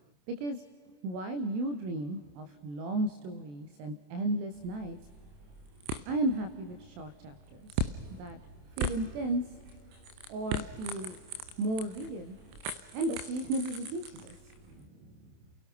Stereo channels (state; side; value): late; left; 27 ms